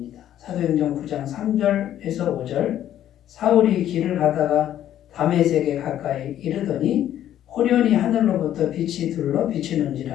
사도행전 9장 3절에서 5절 사울이 길을 가다가 다메섹에 가까이 이르더니 호련히 하늘로부터 빛이 둘러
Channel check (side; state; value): right; quieter; 11.5 dB